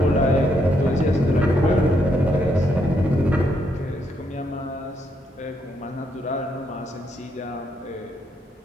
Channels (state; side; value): normal; both; correlation 0.76